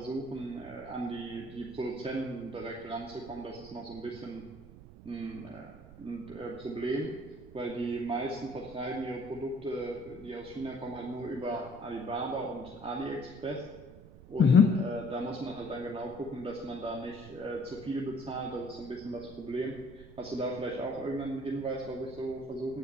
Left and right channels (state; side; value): noise; right; rumble, 17 dB below the sound